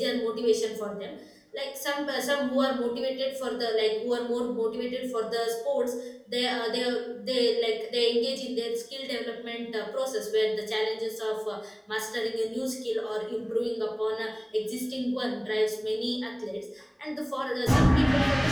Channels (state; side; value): identical; both; correlation 1.00